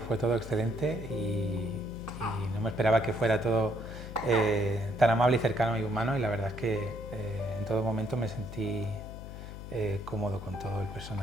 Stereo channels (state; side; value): noise; left; hum, 10 dB below the sound